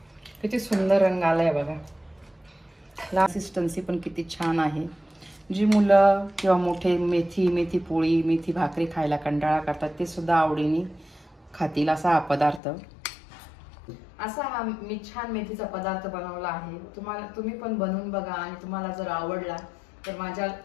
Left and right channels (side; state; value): right; drops out; at 12.6 s